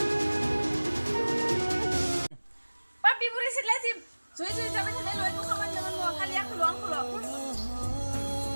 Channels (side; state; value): both; inverted; correlation -1.00